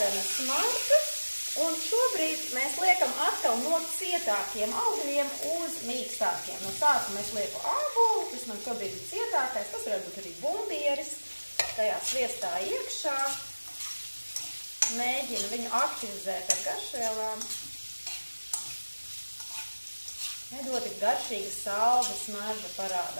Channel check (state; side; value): inverted; both; correlation -1.00